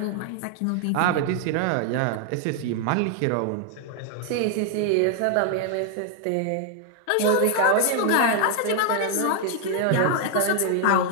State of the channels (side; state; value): both; different; correlation 0.00